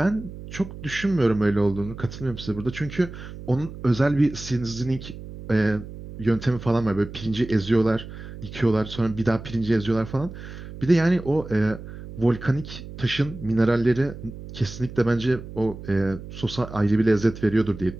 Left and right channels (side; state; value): right; noise; hum, 13 dB below the sound